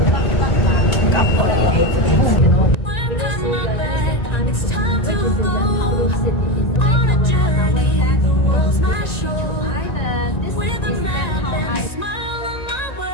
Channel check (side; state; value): right; late; 1.9 ms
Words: It's time to go on a journey. The world's my show. With a map and a smile on my